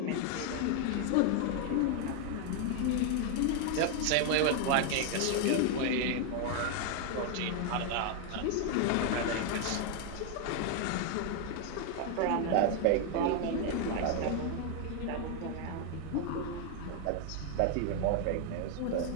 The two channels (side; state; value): both; different; correlation 0.01